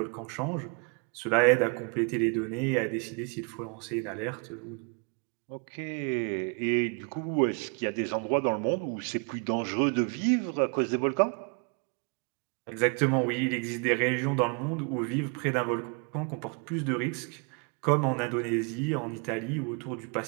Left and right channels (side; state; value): left; quieter; 35.3 dB